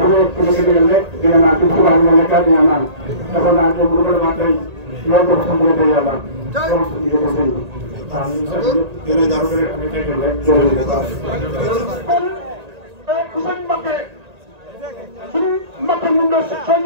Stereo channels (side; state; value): left; late; 1.8 ms